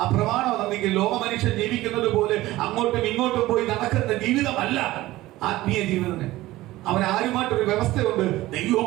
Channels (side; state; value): left; quieter; 17.3 dB